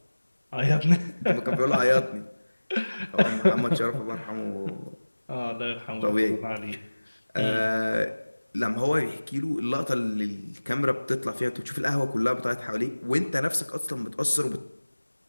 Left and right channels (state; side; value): inverted; both; correlation -1.00